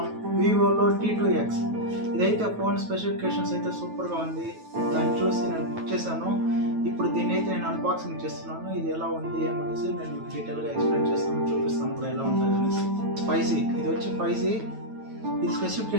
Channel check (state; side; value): late; left; 9.2 ms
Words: వివోలో T2X ఇదైతే ఫోన్ స్పెసిఫికేషన్స్ అయితే సూపర్గా ఉంది. దాన్ని చూసి నేను బుక్ చేశాను. ఇప్పుడు దీన్ని అయితే నేను అన్బాక్సింగ్ చేస్తున్నాను. ఇది ఎలా ఉంది అనేసి నేను డీటెయిల్గా ఎక్స్ప్లెయిన్ చేస్తాను, చూపిస్తాను కూడా ఎలా ఉంటుంది అనేసి. 5G ఇది వచ్చి 5G. ఇది